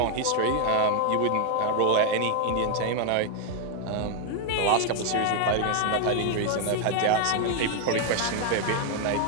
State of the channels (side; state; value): both; different; correlation 0.01